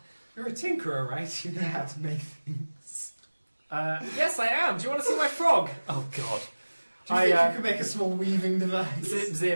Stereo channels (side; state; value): both; inverted; correlation -1.00